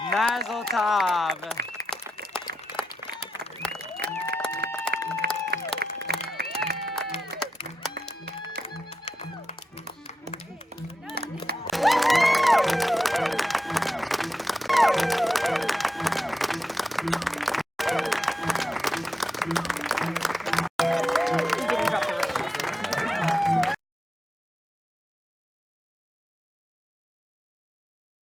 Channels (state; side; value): normal; both; correlation 0.88